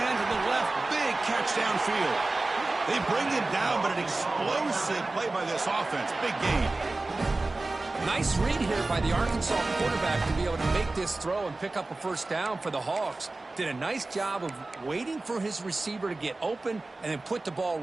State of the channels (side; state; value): left; quieter; 3.1 dB